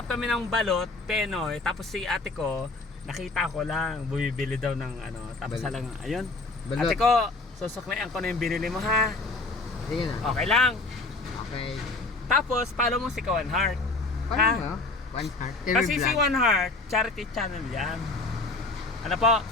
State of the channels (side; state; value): right; quieter; 3.3 dB